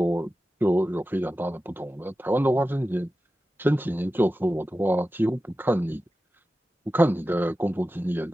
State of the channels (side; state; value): both; normal; correlation 0.94